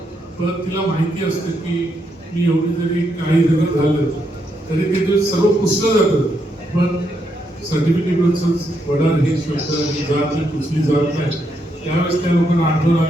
पण तिला माहिती असतं की मी एवढी जरी काही जरी झालं तरी ते सर्व पुसलं जातं, पण सर्टिफिकेटवरच वडार हे शब्द ही जात ही पुसली जात नाही. त्यावेळेस त्या लोकांना आठवण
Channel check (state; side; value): normal; both; correlation 0.79